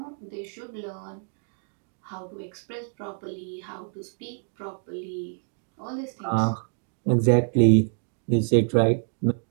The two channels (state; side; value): silent; left; 60 dB below the other